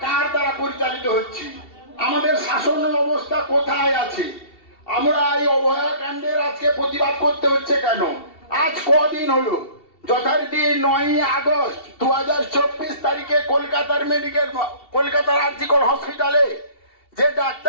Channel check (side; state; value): right; late; 2.7 ms